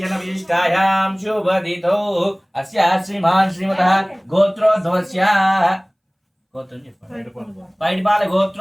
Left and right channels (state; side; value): identical; both; correlation 1.00